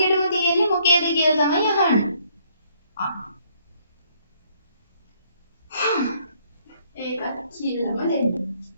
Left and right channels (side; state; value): both; inverted; correlation -0.66